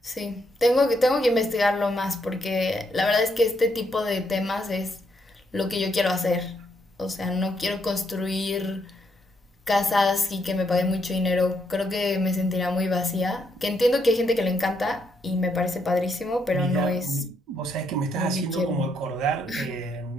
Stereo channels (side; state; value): both; normal; correlation 0.76